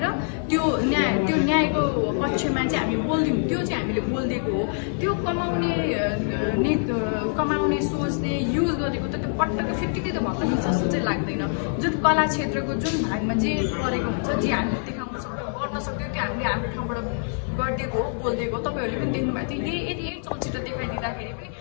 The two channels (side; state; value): right; silent; 62 dB below the other